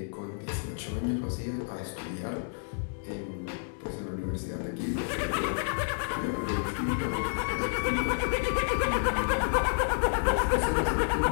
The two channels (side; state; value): right; silent; digital silence